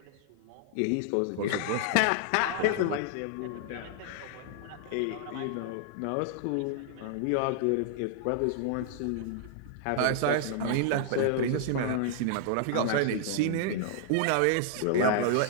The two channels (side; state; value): both; different; correlation -0.01